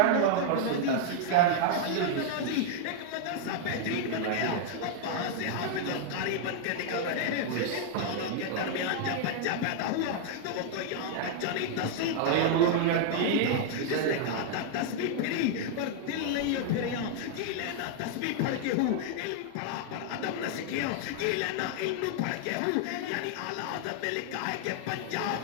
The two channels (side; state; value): both; different; correlation 0.00